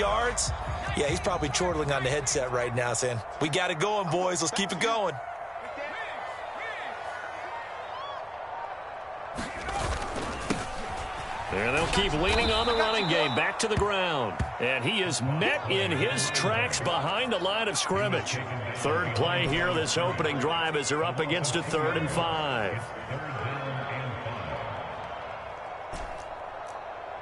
Yeah, he's probably chortling on the headset right now saying, we got it going, boys. Let's keep it going. And they'll keep leaning on the running game back to the ground. And he is met in his tracks behind the line of scrimmage. Third play here this opening drive as they're up against a 3rd and 5.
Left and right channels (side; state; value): both; identical; correlation 1.00